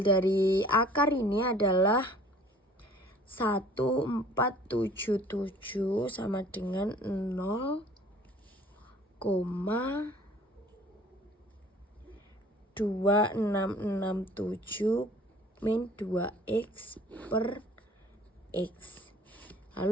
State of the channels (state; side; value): normal; both; correlation 0.51